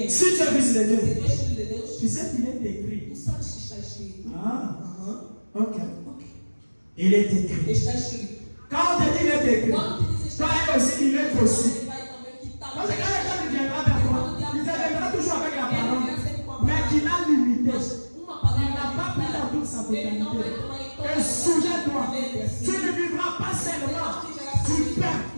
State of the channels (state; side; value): inverted; both; correlation -1.00